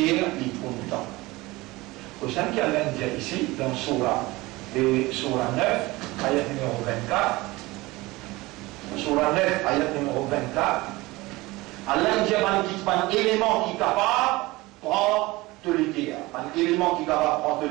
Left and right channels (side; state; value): left; quieter; 21.0 dB